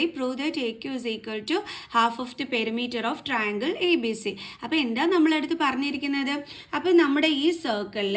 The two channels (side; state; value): both; identical; correlation 1.00